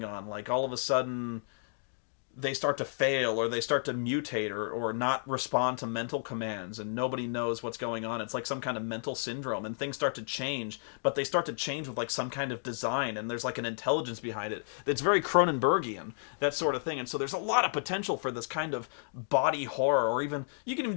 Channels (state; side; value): silent; right; digital silence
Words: on, like all of a sudden they start to fail, or they start to mutate, or not respond to mental commands, and nobody knows what's going on. It's like some kind of mental syndrome, and things start to change, but they start to change with like some kind of design, and there's like an intelligence behind it. It's very Cronenbergian, that sort of thing. And so there's a lot of potential for this kind of body horror, or even, you can even